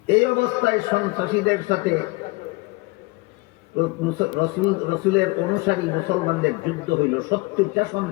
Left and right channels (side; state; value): right; quieter; 24.6 dB